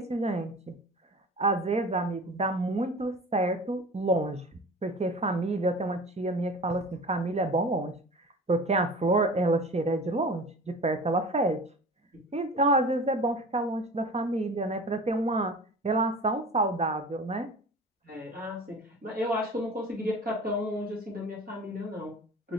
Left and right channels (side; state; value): both; normal; correlation 0.38